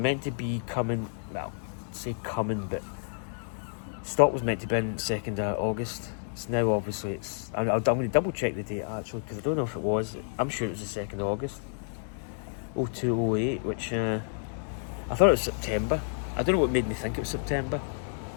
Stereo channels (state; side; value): silent; right; digital silence